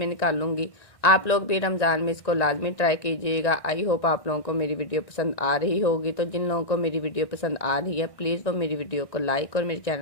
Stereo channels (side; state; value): right; late; 1.9 ms